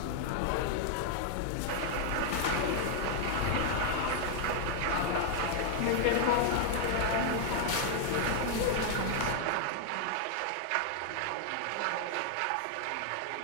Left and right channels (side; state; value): both; different; correlation 0.00